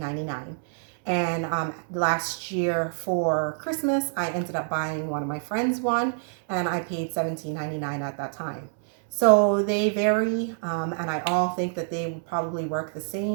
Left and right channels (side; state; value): left; silent; 61 dB below the other